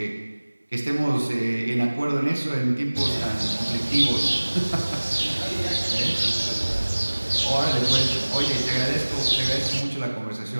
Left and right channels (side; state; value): both; inverted; correlation -1.00